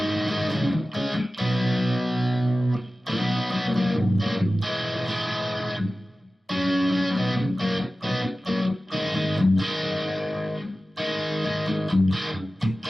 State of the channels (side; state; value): both; normal; correlation 0.95